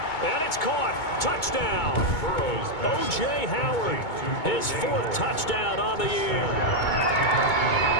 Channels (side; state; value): right; late; 2.2 ms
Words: And it's caught. Touchdown. O.J. Howard, his 4th touchdown on the year.